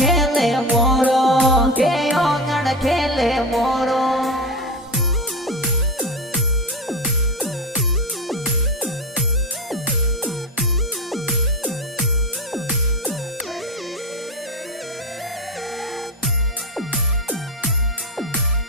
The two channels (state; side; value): normal; both; correlation 0.22